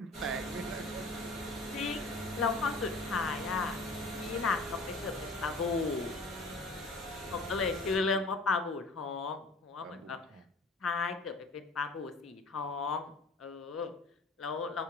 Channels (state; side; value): quieter; right; 3.0 dB